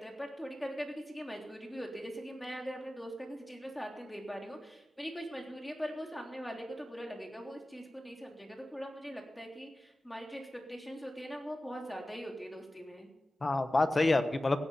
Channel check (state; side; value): normal; both; correlation 0.96